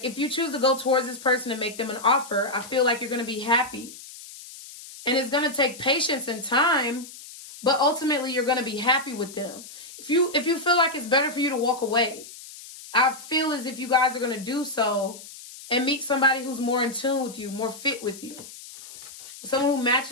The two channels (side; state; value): left; noise; hiss, 16 dB below the sound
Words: if you choose to go towards this person and make them an offer, I feel like you're going to be happy. And it's going to take patience and time, but ultimately you're going to be happy with them. If you feel like it's better for you to walk away, I feel as if you guys are going to do so and meet somebody who's more in tune with you, more fit with you. Someone who